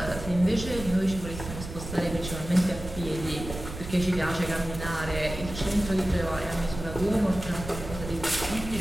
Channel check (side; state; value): right; noise; rumble, 10 dB below the sound